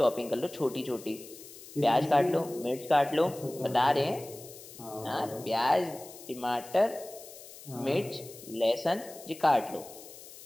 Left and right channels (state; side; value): noise; left; hiss, 17 dB below the sound